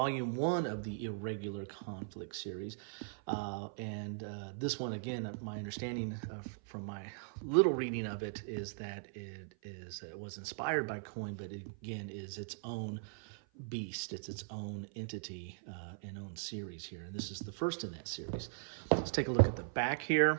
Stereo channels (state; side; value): silent; left; 52 dB below the other